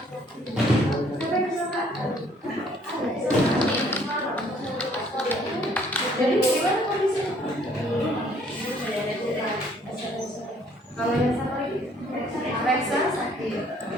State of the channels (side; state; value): both; normal; correlation 0.61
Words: Jadi gimana kondisinya? Kalau yang satu lagi, Alexa sakit.